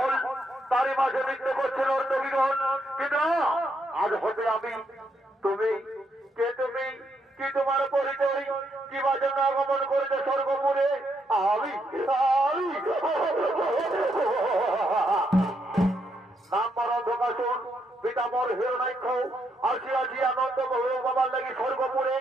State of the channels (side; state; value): both; normal; correlation 0.77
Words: তারই মাঝে নৃত্য করছিল অর্ণবীগণ। কিন্তু আজ হতে আমি, তুমি কে, তুমি কি, তোমার পরিচয়, কিবা জন্য আগমন করেছে স্বর্গপুরে? আমি নাম পর অন্ধকাশন পিতামর হিরণাক্ষ আসিয়াছি আনন্দ বাবার লাগি স্বর্গপুরে।